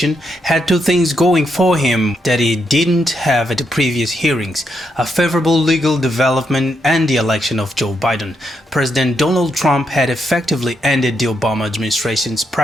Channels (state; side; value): normal; both; correlation 0.80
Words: had two things going for him that he didn't have at the previous hearings: a favorable legal development and the election of Joe Biden. President Donald Trump had effectively ended the Obama administration's